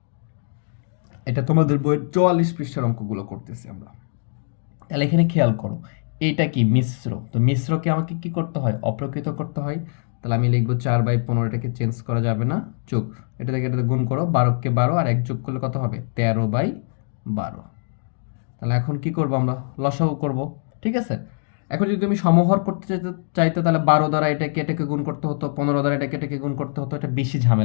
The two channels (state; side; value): silent; right; 62 dB below the other